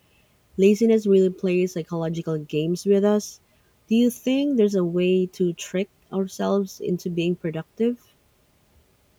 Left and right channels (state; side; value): identical; both; correlation 1.00